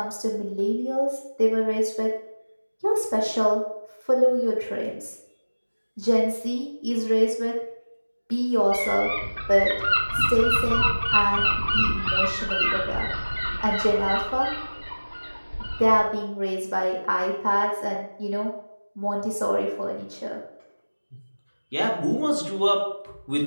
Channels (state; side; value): inverted; both; correlation -1.00